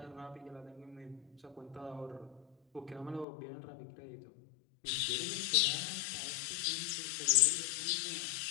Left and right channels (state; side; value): drops out; right; at 3.2 s